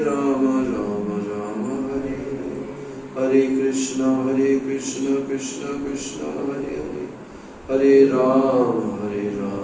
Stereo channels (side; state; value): both; identical; correlation 1.00